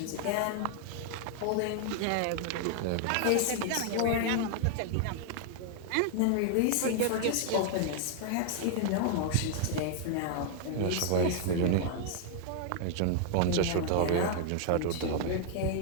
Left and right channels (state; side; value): different; both; correlation 0.00